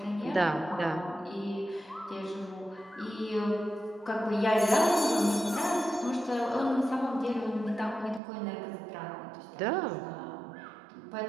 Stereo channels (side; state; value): left; drops out; at 8.2 s